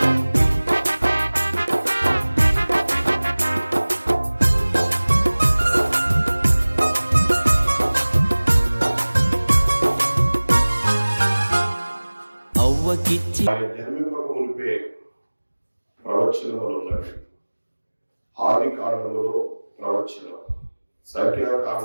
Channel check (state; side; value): inverted; both; correlation -1.00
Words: జన్మింపక మునిపే ప్రవచనములు ఉన్నవి. ఆది కాండములో ప్రవచనం,